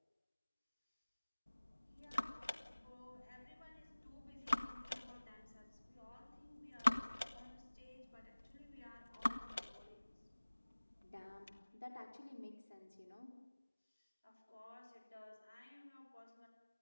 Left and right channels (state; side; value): inverted; both; correlation -1.00